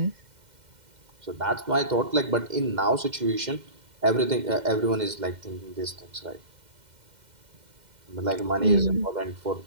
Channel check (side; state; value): left; late; 2.1 ms